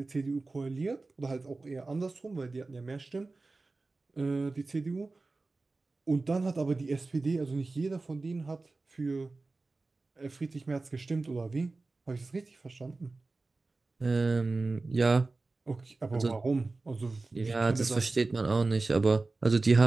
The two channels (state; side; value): quieter; left; 3.5 dB